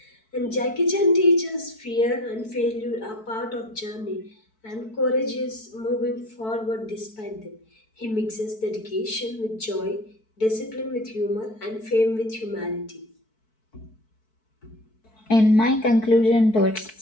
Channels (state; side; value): late; right; 4.6 ms